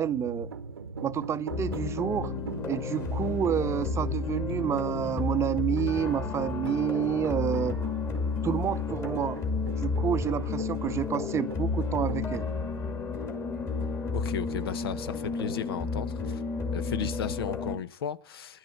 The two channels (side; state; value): both; normal; correlation 0.43